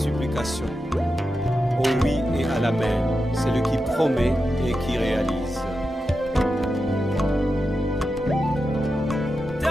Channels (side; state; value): both; normal; correlation 0.89